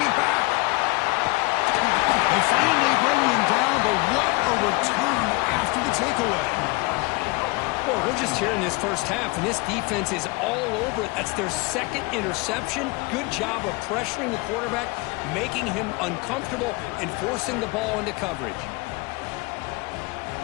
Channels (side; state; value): right; quieter; 25.2 dB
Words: back. They finally bring him down, but what a return after the takeaway. Well, we're just here in this first half, and this defense is all over it. That's their 2nd interception. Good job of pressuring the quarterback, making him uncomfortable, and forcing the ball into coverage.